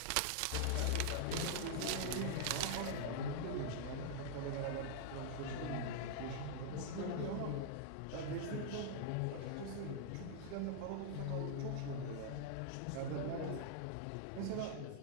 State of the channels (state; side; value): different; both; correlation -0.01